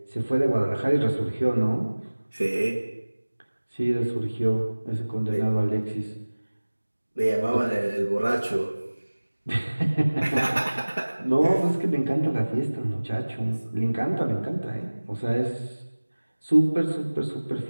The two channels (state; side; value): inverted; both; correlation -1.00